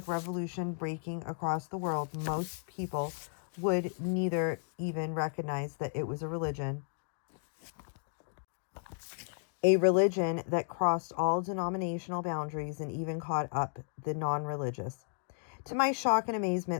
revolution breaking across the world, most people would neither even recognize that it was a religion that crossed all denominational boundaries and even caught up the non-religious. To my shock and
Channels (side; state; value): right; silent; digital silence